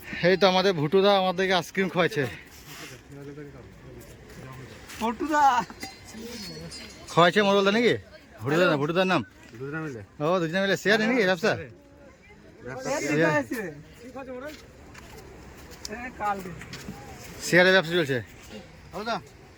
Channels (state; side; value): identical; both; correlation 1.00